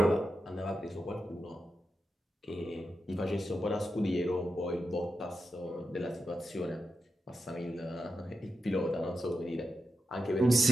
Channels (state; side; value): normal; both; correlation 0.88